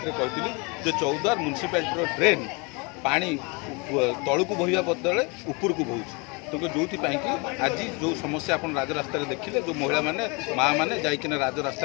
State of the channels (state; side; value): quieter; right; 30.0 dB